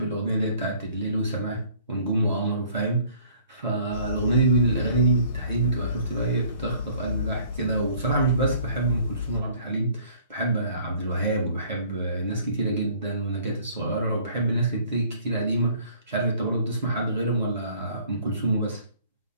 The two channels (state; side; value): inverted; both; correlation -0.56